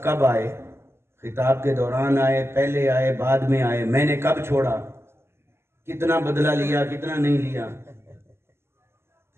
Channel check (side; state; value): left; late; 0.12 ms